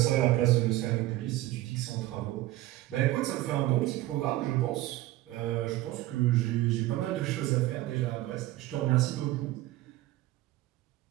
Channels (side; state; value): left; quieter; 16.6 dB